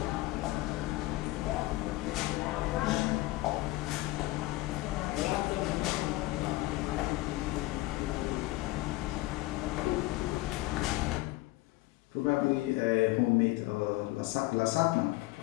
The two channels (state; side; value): quieter; right; 19.4 dB